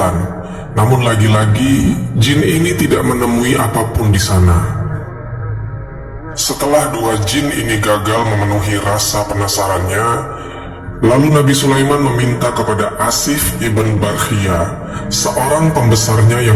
Namun lagi-lagi jin ini tidak menemui apapun di sana. Setelah dua jin ini gagal memenuhi rasa penasarannya, lalu Nabi Sulaiman meminta kepada Asif ibn Barkhia, seorang pembesarnya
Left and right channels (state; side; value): identical; both; correlation 1.00